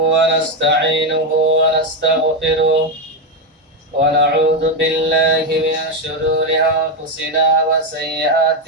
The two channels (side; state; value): both; normal; correlation 0.07